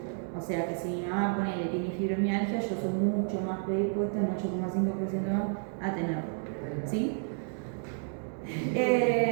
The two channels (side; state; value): left; silent; 55 dB below the other